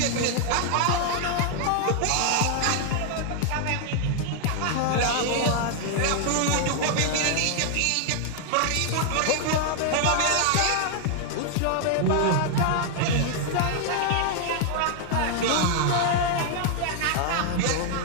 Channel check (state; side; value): different; both; correlation 0.00